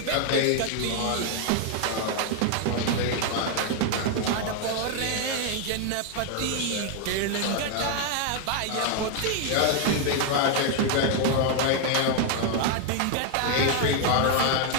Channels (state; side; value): different; both; correlation 0.00